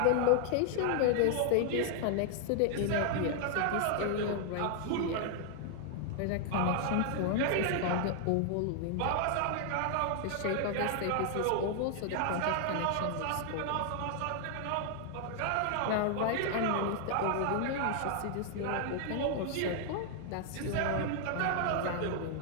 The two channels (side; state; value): both; different; correlation 0.00